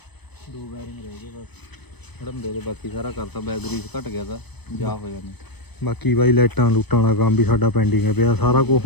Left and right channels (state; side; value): late; right; 0.98 ms